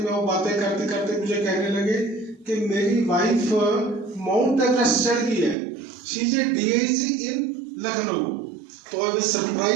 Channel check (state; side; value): drops out; left; at 5.6 s